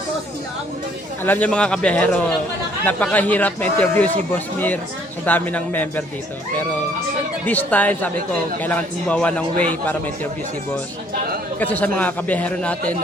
Alam niyo mga kabiyahero, napakahirap ma-interview si Boss Mir sa dami ng member dito. Pero this time, sabi ko, kailangan gumawa ng way para ma-interview si Boss. Kasi sa mga kabiyahero natin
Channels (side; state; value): both; normal; correlation 0.62